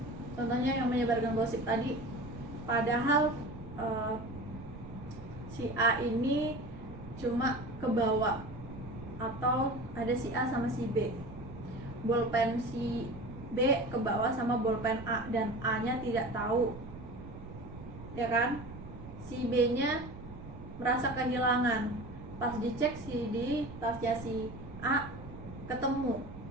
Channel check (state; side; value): noise; right; rumble, 13 dB below the sound